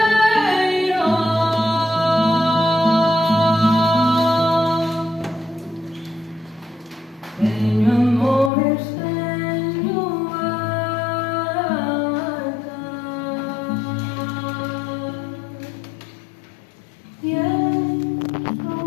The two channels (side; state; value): right; drops out; at 8.5 s